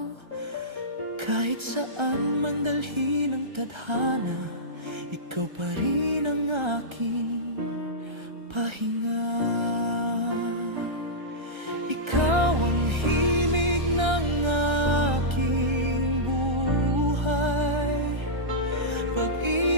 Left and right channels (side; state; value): left; late; 1.3 ms